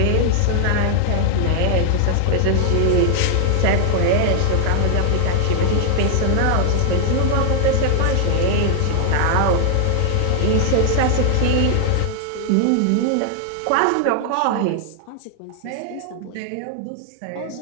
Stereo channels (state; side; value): different; both; correlation 0.00